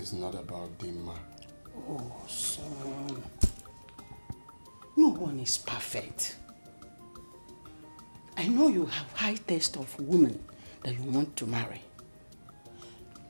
not about Dimma. Oh, son. No one is perfect. I know you have high taste of women that you want to marry.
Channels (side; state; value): both; inverted; correlation -1.00